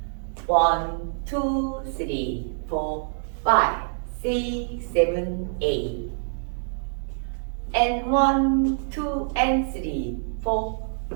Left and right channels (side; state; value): left; silent; 61 dB below the other